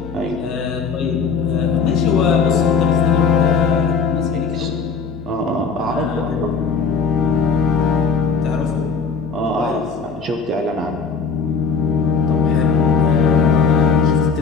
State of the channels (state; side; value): quieter; right; 5.4 dB